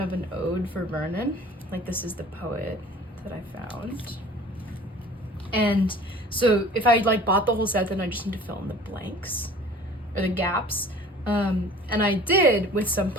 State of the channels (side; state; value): both; normal; correlation 0.46